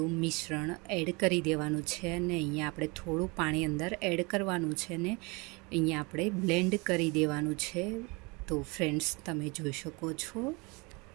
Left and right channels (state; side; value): quieter; left; 27.7 dB